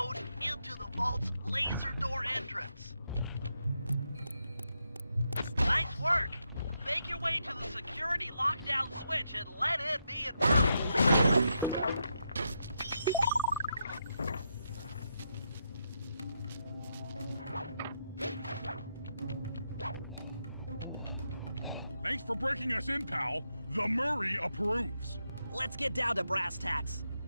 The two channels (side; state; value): both; inverted; correlation -0.82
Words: into the vault's laser door entrance. Nice work. Make your way to the security lockdown switch and let in me and Murray. Thanks for breaking us in, pal. The Murray approves. Let's get down to brass tacks.